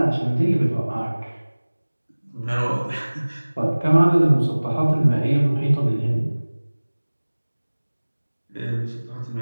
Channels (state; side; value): inverted; both; correlation -1.00